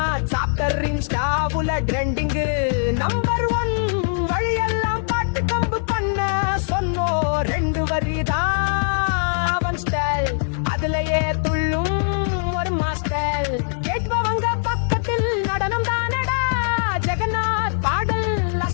சாப்டர் இன்ஸ்டாவுல ட்ரெண்டிங் நம்பர் 1 வழியெல்லாம் பாட்டு கம்பு பண்ண சொன்னோ ரெண்டு வரிதான் அவன் ஸ்டைல் அதுலயே துள்ளும் ஒரு மாஸ்டர் கேட்பவங்க பக்கத்தில் நடனம் தானடா ஜெகநாத் பாடல்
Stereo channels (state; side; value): silent; right; 64 dB below the other